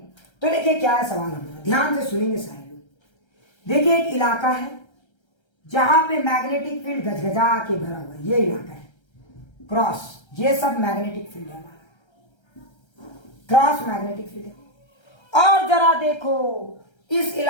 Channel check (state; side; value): late; right; 1.3 ms